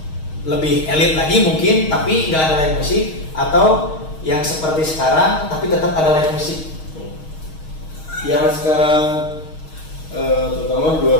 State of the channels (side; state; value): right; late; 6.4 ms